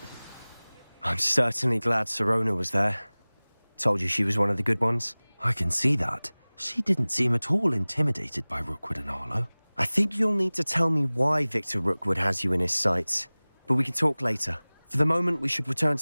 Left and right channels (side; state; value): both; inverted; correlation -1.00